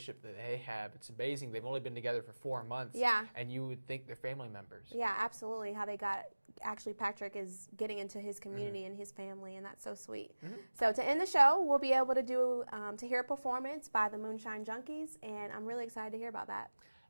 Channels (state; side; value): inverted; both; correlation -1.00